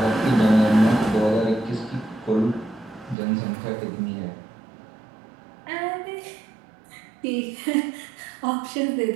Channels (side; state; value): left; drops out; at 3.2 s